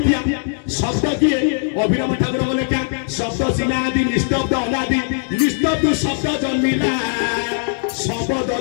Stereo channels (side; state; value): right; silent; 66 dB below the other